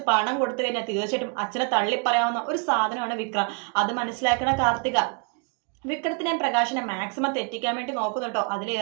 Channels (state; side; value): quieter; left; 37.8 dB